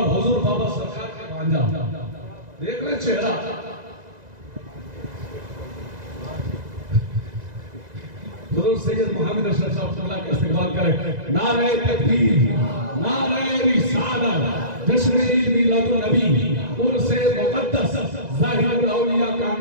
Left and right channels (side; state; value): left; late; 2.0 ms